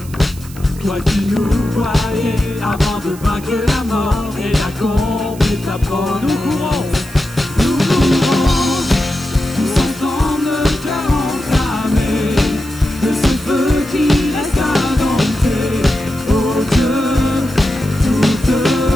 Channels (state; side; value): noise; right; hiss, 19 dB below the sound